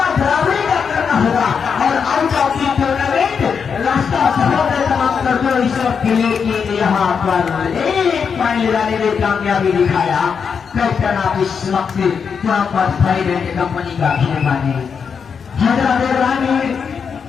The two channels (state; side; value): quieter; right; 6.3 dB